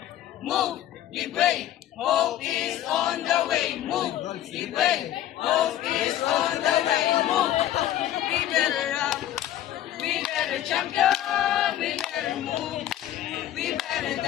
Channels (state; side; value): quieter; right; 12.4 dB